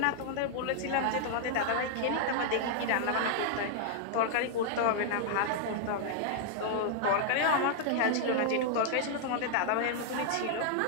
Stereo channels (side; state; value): both; different; correlation -0.01